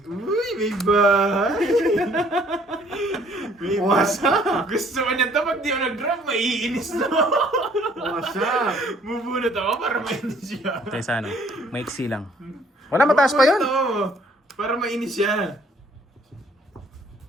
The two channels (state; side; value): normal; both; correlation 0.60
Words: Uy, may bahay. May Wasak! Gusto ko niya ito. Pag di ako nag-drop, maiinis na. Wasak! Bubunot ako para mainis siya. Tayo sa ano, maiksi lang. Wala, mataas pa yun. Bubunot ako para mainis siya.